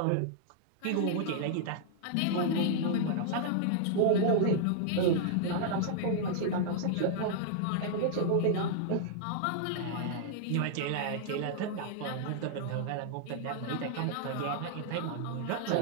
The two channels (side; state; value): both; different; correlation -0.01